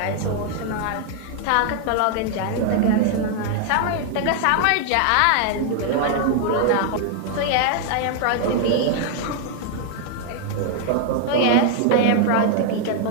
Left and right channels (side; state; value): both; different; correlation 0.00